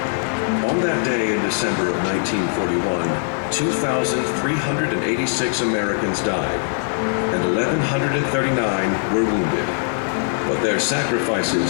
On that day in December of 1941, 2,386 Americans died, and 1,139 were wounded. But their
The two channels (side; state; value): right; silent; 65 dB below the other